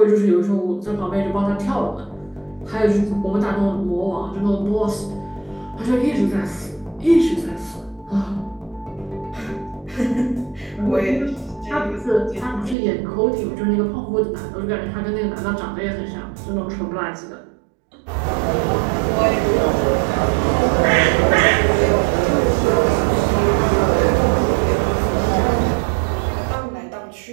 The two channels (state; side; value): drops out; left; at 12.8 s